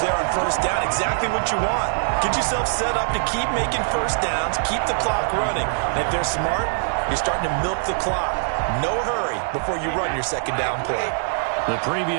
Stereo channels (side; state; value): left; silent; digital silence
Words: on first down. Exactly what you want. Get yourself set up to keep making first downs, keep the clock running. And if they're smart, you're starting to milk the clock. No hurry before you run your 2nd down play. The